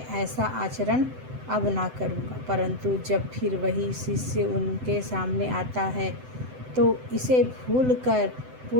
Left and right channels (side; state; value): left; late; 7.9 ms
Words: ऐसा आचरण अब ना करूँगा। परंतु जब फिर वही शिष्य उनके सामने आता है तो इसे भूलकर